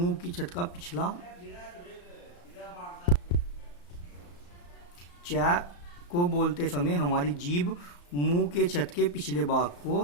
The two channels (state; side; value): late; right; 34 ms